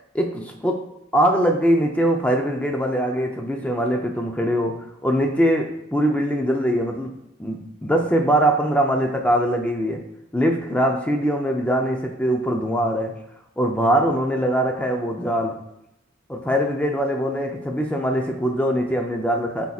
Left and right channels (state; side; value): normal; both; correlation 0.64